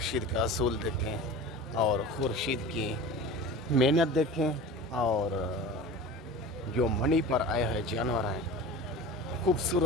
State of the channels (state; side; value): normal; both; correlation 0.35